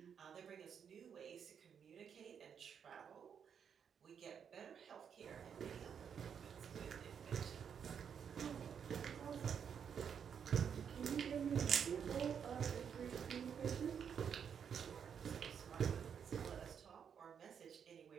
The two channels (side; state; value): left; quieter; 7.6 dB